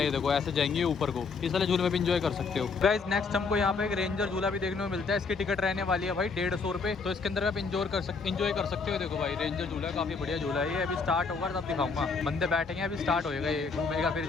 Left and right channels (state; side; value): quieter; right; 4.7 dB